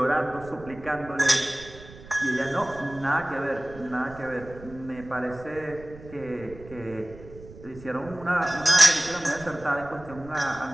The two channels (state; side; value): noise; right; rumble, 17 dB below the sound